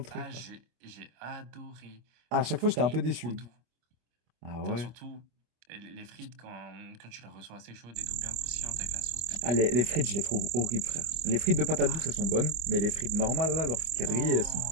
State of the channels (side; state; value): left; late; 25 ms